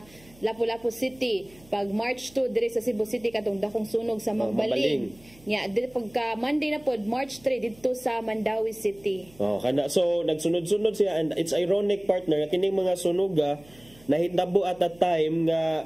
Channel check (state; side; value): noise; right; hum, 26 dB below the sound